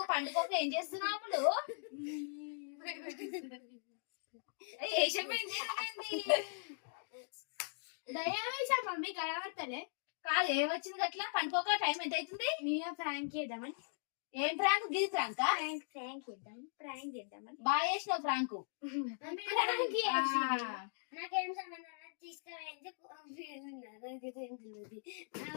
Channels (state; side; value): silent; right; digital silence